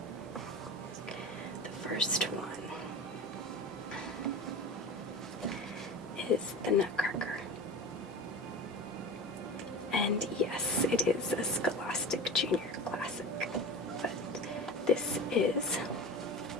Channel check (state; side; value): normal; both; correlation 0.31